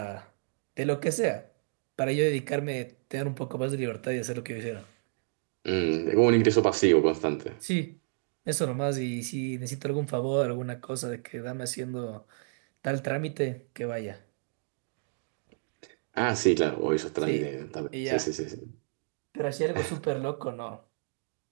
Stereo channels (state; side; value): silent; left; digital silence